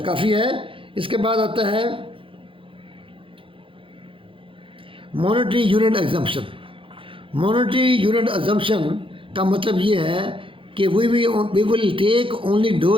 کافی ہے۔ اس کے بعد آتا ہے monetary unit assumption. Monetary unit assumption کا مطلب یہ ہے کہ we will take only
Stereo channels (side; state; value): left; late; 0.25 ms